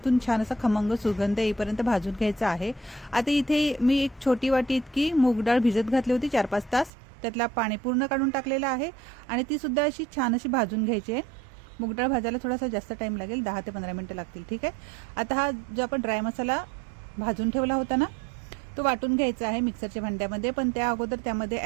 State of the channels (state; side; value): drops out; left; at 6.9 s